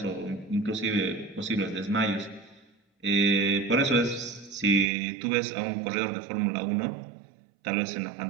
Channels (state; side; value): drops out; left; at 4.9 s